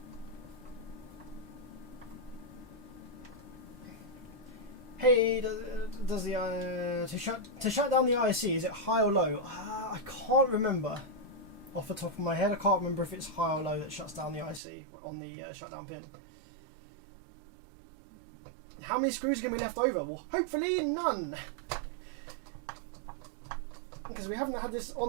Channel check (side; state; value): left; drops out; at 14.6 s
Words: Hey, does the to shut down the IC, is it high or low? I can't remember. Off the top of my head, I can't remember if it's high or low that shuts down the IC on the shutdown pin. How many screws are going to be left over? Well, hopefully none. Because we haven't had this